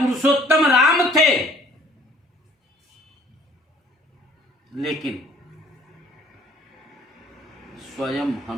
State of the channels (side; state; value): both; normal; correlation 0.57